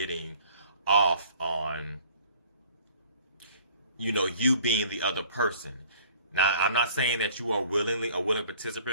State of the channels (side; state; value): both; inverted; correlation -0.52